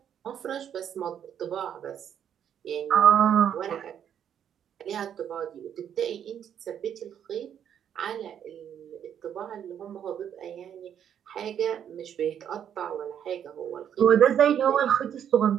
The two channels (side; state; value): left; quieter; 9.1 dB